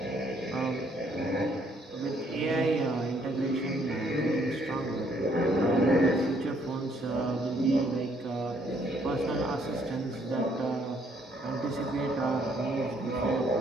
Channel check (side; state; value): both; normal; correlation 0.67